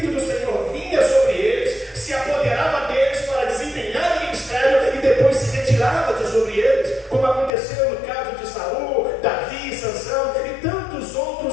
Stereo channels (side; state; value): right; drops out; at 7.5 s